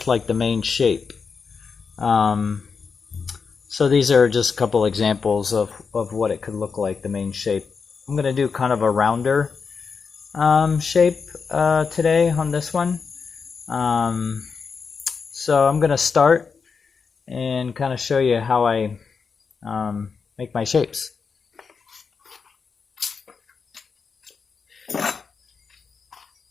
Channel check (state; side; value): quieter; right; 5.4 dB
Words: like the main shape. So these are just a couple examples of what it could look like, the main shape. I'm going to do kind of a rounder shape today on this one. So I'm going to start and kind of show you how I make my shapes.